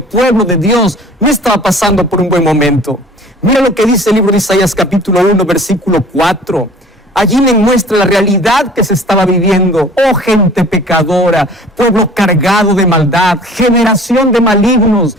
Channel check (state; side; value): normal; both; correlation 0.47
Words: pueblo de Dios, no estaba pasando por un buen momento. Mira lo que dice el libro de Isaías capítulo 1, versículo 4. Allí le muestra la realidad que se estaba viviendo. Oh gente pecadora, pueblo cargado de maldad, generación de malignos,